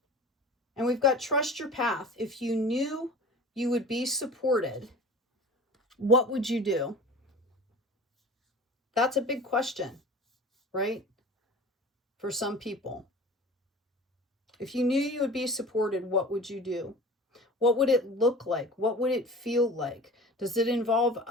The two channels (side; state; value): both; normal; correlation 0.39